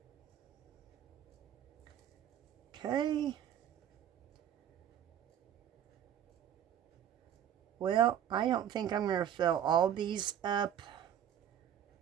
Okay. Well, I don't think I'm going to fill all these up.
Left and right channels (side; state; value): left; quieter; 10.1 dB